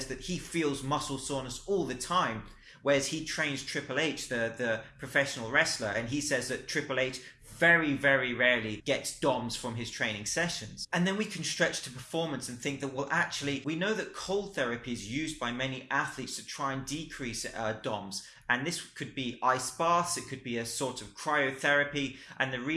that he feels muscle soreness all the time, whereas he trains Triple H, the professional wrestler, and he says that Triple H very, very rarely gets DOMs from his training sessions. And then we can stretch to performance and think that, well, actually, we know that cold therapy is used by many athletes to try and decrease DOMs. And this could be ice baths, it could be a sort of cryotherapy. And the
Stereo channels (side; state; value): both; identical; correlation 1.00